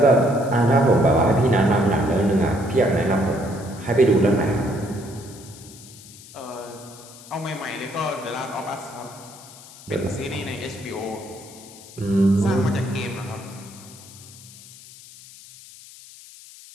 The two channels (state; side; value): noise; left; hiss, 19 dB below the sound